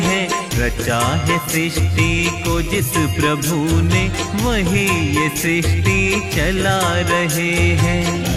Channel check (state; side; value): identical; both; correlation 1.00